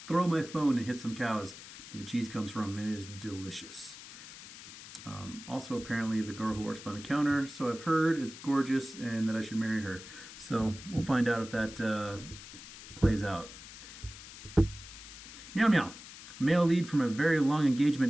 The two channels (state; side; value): noise; left; hiss, 15 dB below the sound